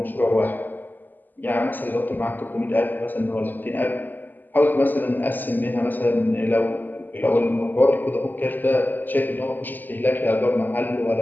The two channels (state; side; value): late; right; 0.088 ms